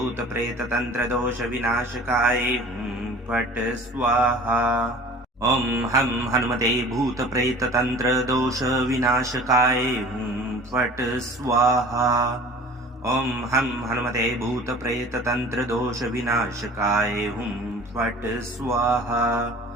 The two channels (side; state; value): both; normal; correlation 0.44